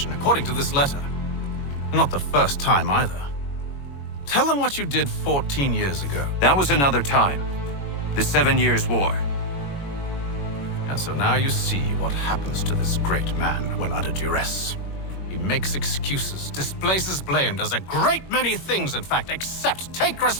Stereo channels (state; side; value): late; right; 21 ms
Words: according to this letter. Not the first time either. Tell them what you did 14 years ago. That was another time. The 7 Years' War. And so now you see what happens to this great man when under duress. He makes excuses, displaces blame, does a great many things, in fact, except take